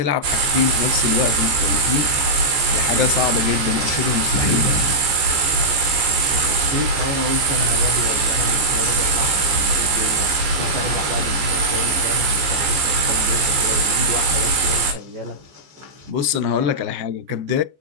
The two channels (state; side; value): late; left; 14 ms